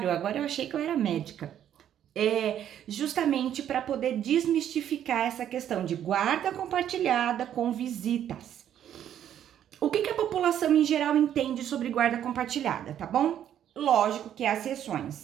Agora eu achei que eu era médica. Justamente para poder desmistificar essa questão de guarda compartilhada com visitas. O que a população em geral entende sobre guarda compartilhada, tá bom? Lógico que há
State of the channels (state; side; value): quieter; left; 10.3 dB